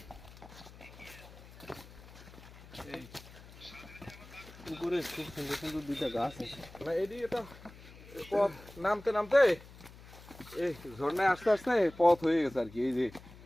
উপরে খুব সুন্দর সুন্দর দুইটা গাছ আছে। এদিকে এটা পথ নামতে নামতে এই ঝর্ণায় আস্তে আস্তে পথ হয়ে গেছে আর কি। এই যে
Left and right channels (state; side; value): noise; left; hum, 19 dB below the sound